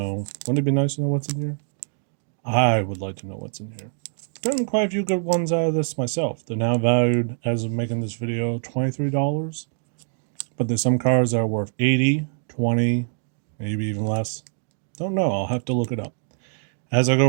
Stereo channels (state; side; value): silent; left; digital silence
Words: Wouldn't it be nice to know what's in here? I would like to know what's in here. I've gotten quite a few good ones out of this myself. They're now valued, as of making this video, $23. But there's some cards that are worth $80, $20, maybe even less. Don't know. I'll have to look it up. As I